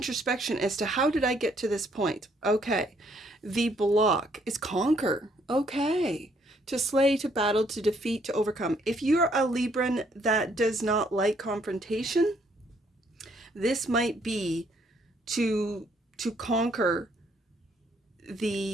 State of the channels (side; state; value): both; normal; correlation 0.68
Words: as to how did I get to this point? Okay. The block is conquer. Okay. To slay, to battle, to defeat, to overcome. If you're a Libran that does not like confrontation, this might be to conquer